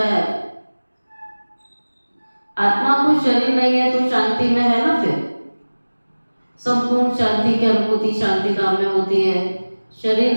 है। आत्मा को शरीर नहीं है तो शांति में है ना, फिर संपूर्ण शांति की अनुभूति शांति धाम में होती है। शरीर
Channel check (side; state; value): both; inverted; correlation -1.00